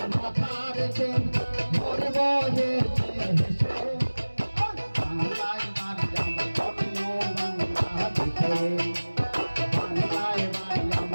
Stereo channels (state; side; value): inverted; both; correlation -1.00